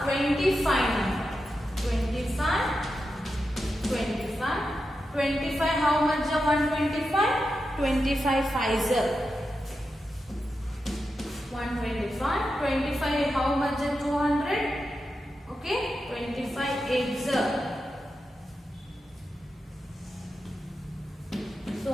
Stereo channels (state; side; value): normal; both; correlation 0.89